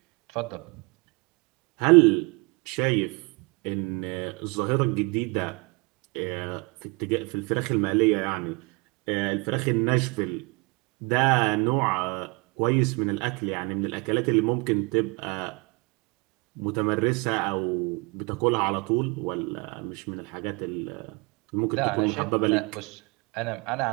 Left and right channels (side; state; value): left; quieter; 29.0 dB